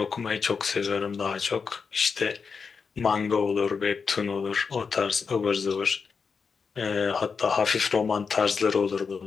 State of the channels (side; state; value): right; quieter; 5.5 dB